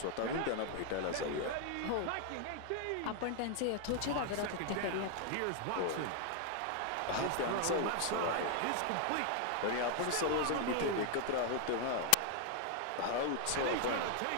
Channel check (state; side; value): different; both; correlation 0.00